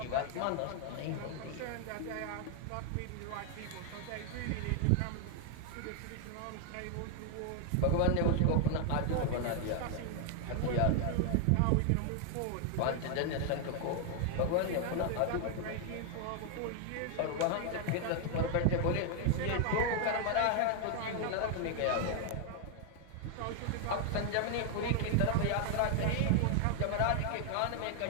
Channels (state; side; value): different; both; correlation 0.00